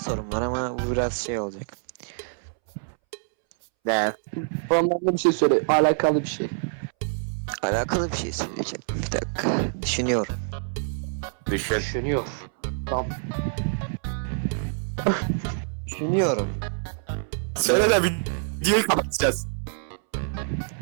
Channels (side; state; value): left; silent; 61 dB below the other